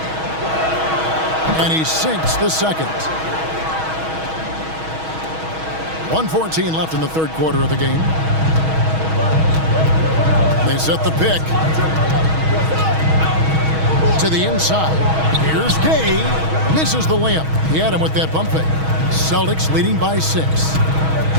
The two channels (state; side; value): late; left; 6.3 ms